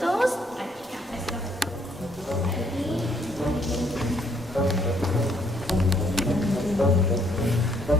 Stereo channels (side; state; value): both; normal; correlation 0.68